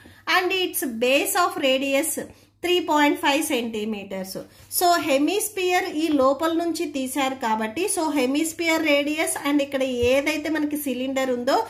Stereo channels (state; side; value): identical; both; correlation 1.00